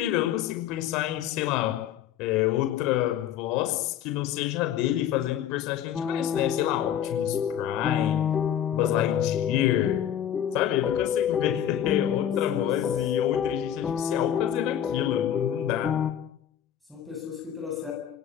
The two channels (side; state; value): right; quieter; 10.2 dB